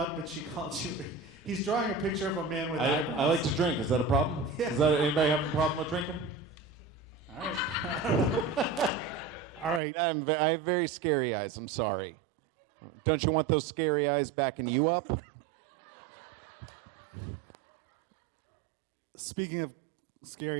that she called you? He's drawing a picture of a man with eyebrows. I like to drink. Is that a problem? Yeah. Anybody having a problem with drinking? All right. I don't know. All right. I have very scary eyes. I'm sorry. Don't you want those scary eyes backing you up? Speaking of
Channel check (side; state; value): left; drops out; at 9.8 s